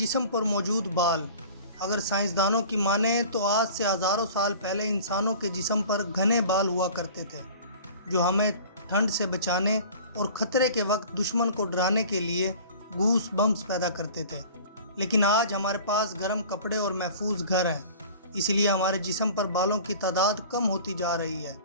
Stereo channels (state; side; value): inverted; both; correlation -0.43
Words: پر موجود بال۔ اگر سائنسدانوں کی مانیں تو آج سے ہزاروں سال پہلے انسانوں کے جسم پر گھنے بال ہوا کرتے تھے، جو ہمیں ٹھنڈ سے بچانے اور خطرے کے وقت دشمن کو ڈرانے کے لیے گوس بمپس پیدا کرتے تھے۔ لیکن آج ہمارے پاس گرم کپڑے اور محفوظ گھر ہیں، اس لیے ہمارے جسم پر بالوں کی تعداد کم ہوتی جا رہی ہے۔